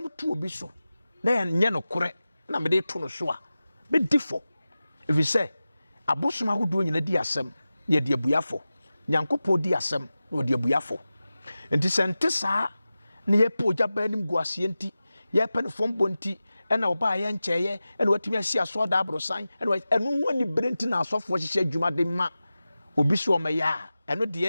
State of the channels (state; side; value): inverted; both; correlation -0.95